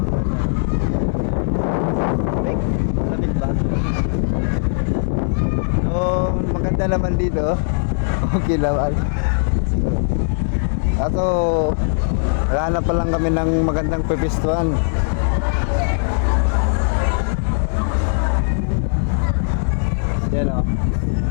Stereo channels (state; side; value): silent; right; 66 dB below the other